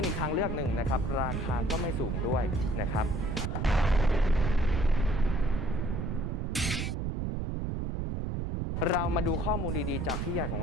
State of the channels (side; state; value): right; noise; rumble, 1 dB below the sound